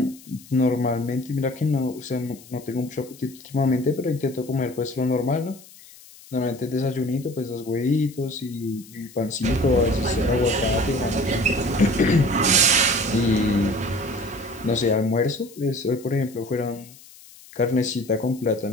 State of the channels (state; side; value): noise; left; hiss, 21 dB below the sound